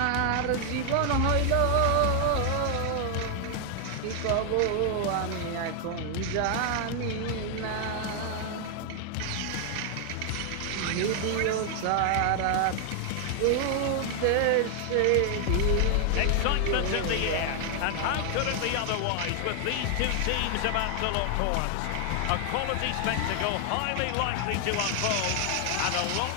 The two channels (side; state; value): both; different; correlation 0.00